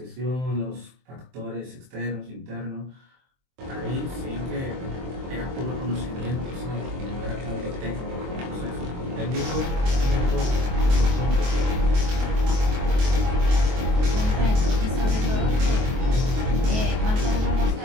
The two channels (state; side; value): late; left; 23 ms